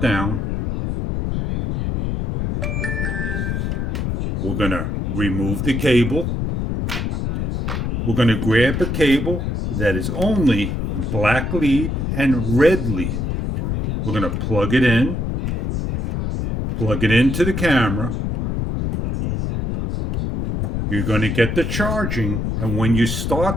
We're going to remove the cable. We're going to grab a cable that is only black lead and red lead. We're going to plug it into the camera. You're going to get the charging, and when you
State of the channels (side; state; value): left; noise; rumble, 1 dB below the sound